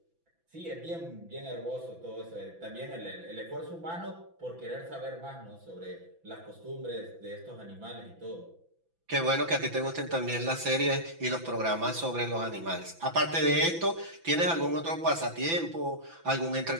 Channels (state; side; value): late; left; 6.0 ms